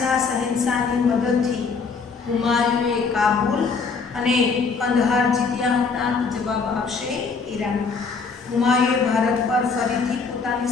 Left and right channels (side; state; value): right; quieter; 4.9 dB